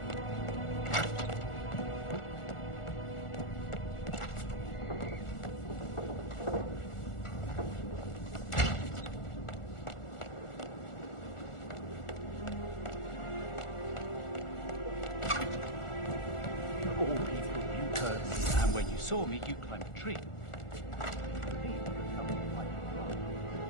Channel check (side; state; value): right; late; 1.4 ms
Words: All people, you heard me, and when you saw me, you climbed a tree.